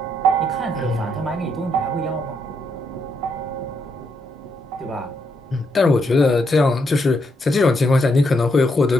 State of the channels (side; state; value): both; normal; correlation 0.77